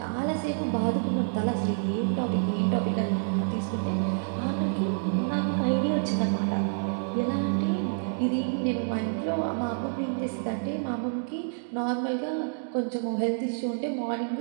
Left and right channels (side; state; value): left; silent; digital silence